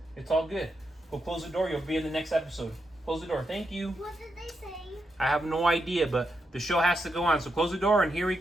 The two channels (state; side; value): normal; both; correlation 0.83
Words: It's all good. We'll close the door. You'll be in the next episode. Close the door. Thank you. What did they say? I have no idea, but the show has to go on. So close the door, and here we